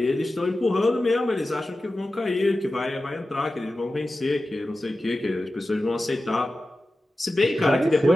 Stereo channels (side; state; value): both; normal; correlation 0.94